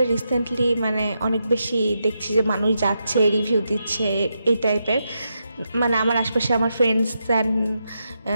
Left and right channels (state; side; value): inverted; both; correlation -0.84